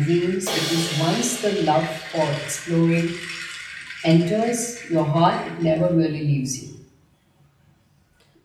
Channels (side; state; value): both; identical; correlation 1.00